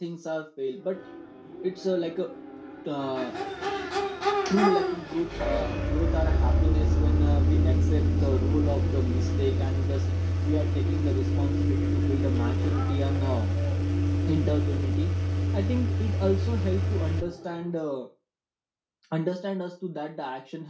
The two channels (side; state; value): both; identical; correlation 1.00